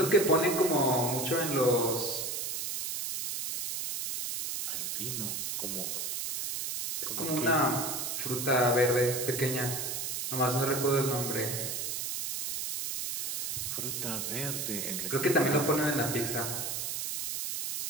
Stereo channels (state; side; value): noise; right; hiss, 3 dB below the sound